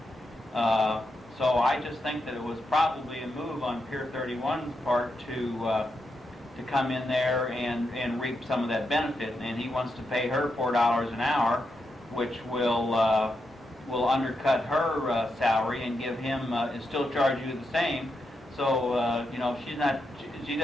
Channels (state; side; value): normal; both; correlation 0.84